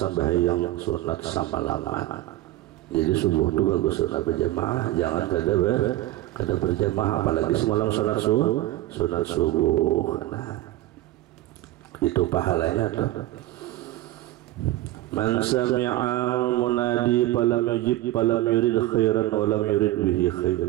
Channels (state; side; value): quieter; left; 16.0 dB